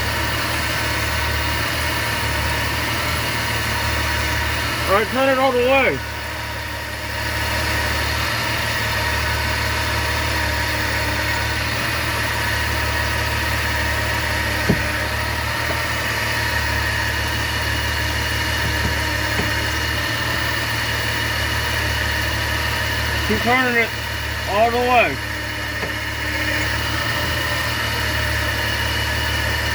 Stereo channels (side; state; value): both; identical; correlation 1.00